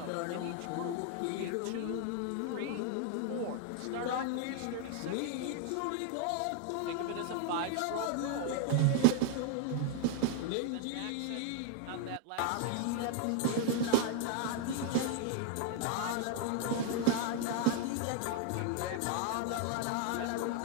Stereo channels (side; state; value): both; different; correlation 0.00